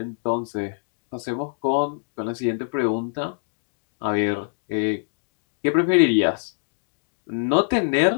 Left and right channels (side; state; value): right; silent; digital silence